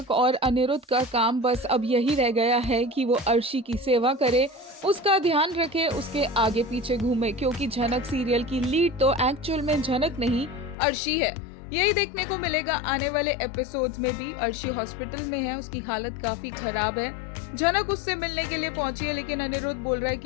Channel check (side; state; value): right; drops out; at 10.8 s